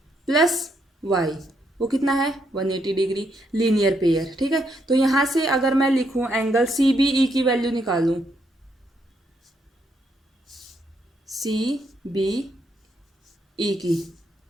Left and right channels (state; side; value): normal; both; correlation 0.76